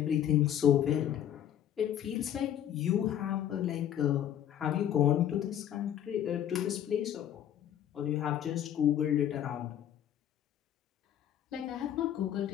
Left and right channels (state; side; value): quieter; right; 10.6 dB